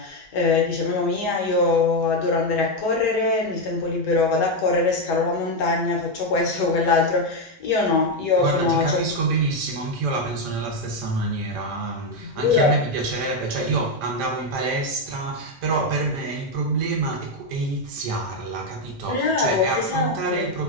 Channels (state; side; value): normal; both; correlation 0.06